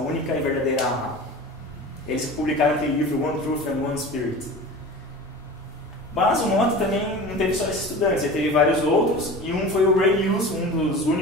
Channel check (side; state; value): both; normal; correlation 0.35